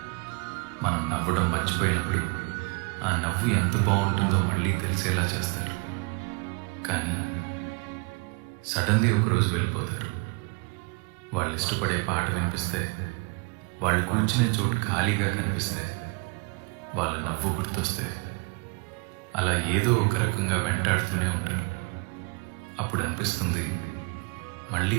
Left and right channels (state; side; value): quieter; left; 30.1 dB